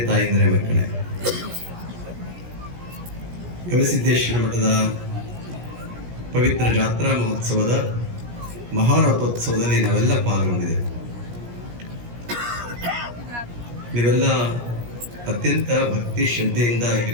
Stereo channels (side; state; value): left; late; 17 ms